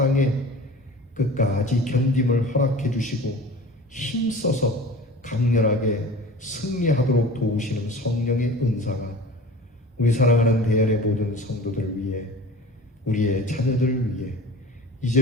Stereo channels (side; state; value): both; normal; correlation 0.39